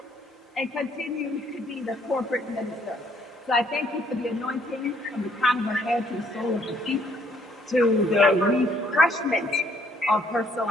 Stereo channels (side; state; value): both; normal; correlation 0.66